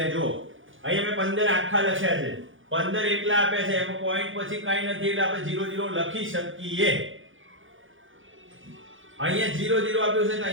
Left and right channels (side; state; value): left; late; 0.57 ms